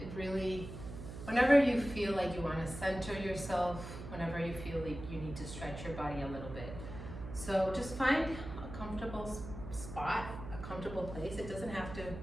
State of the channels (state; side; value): noise; right; hum, 10 dB below the sound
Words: really, whenever you feel like you want to center yourself, whenever you feel like you need to stretch your body a little bit. So just find a comfortable spot, a comfortable place. It doesn't have to